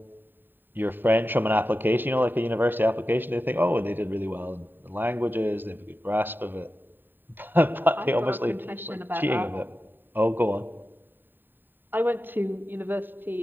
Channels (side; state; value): left; late; 0.093 ms